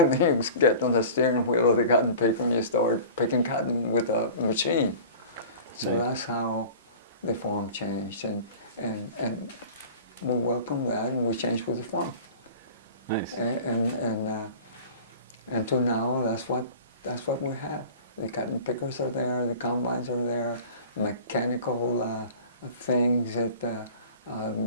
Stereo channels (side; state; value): both; inverted; correlation -0.40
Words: then you get on the steering wheel of the cotton picker and you start picking cotton with a machine. So that's how the farm changed, and we welcome that, and we changed with the farm. Nice. And to now, that's what we have. The cotton pickers are there, the combines are there, mechanical things that